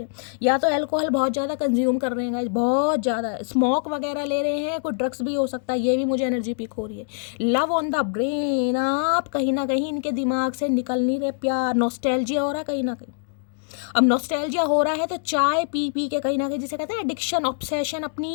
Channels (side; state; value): right; silent; digital silence